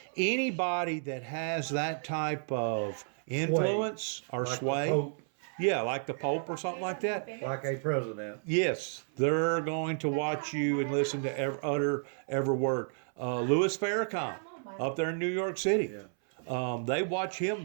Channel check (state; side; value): silent; left; 57 dB below the other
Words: Anybody that has that type of influence or like the sway, Pope, yeah, like the Pope or something like that, like a president. yes, they're going to watch you and listen to utter every word. Louis Farrakhan up there in New York City, Yeah, they watch him